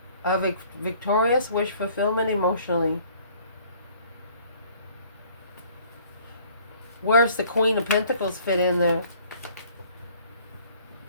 A victorious wish fulfillment emotionally. Where's the Queen of Pentacles fit in there?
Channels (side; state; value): both; inverted; correlation -0.56